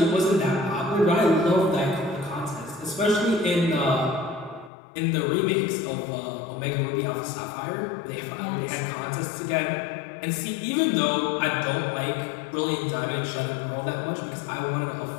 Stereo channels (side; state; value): right; drops out; at 4.7 s